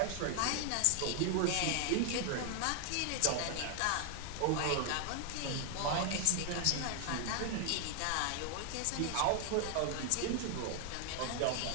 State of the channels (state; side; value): different; both; correlation 0.00